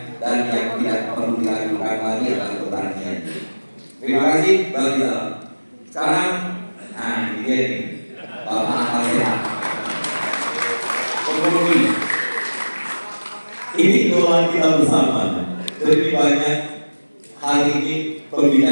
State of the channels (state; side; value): inverted; both; correlation -1.00